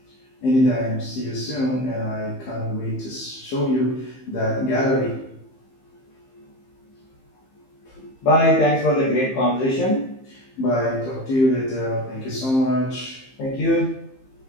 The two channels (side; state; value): right; late; 15 ms